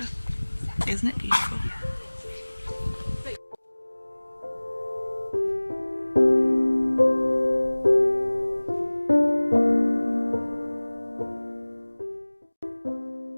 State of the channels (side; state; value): both; inverted; correlation -1.00